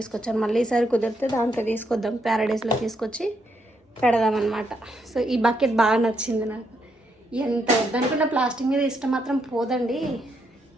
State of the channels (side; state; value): both; normal; correlation 0.77